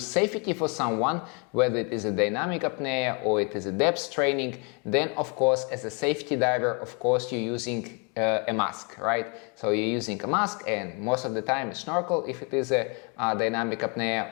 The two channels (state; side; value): quieter; right; 34.1 dB